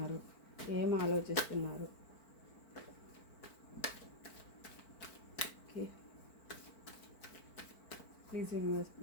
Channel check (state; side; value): late; right; 4.5 ms